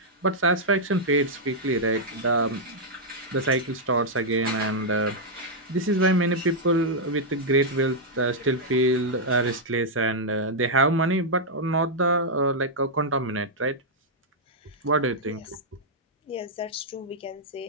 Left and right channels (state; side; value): normal; both; correlation -0.05